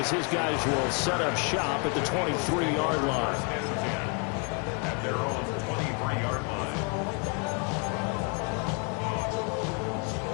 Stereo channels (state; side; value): quieter; right; 35.2 dB